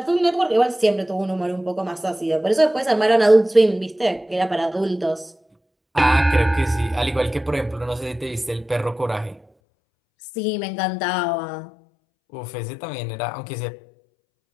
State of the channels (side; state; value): right; drops out; at 9.5 s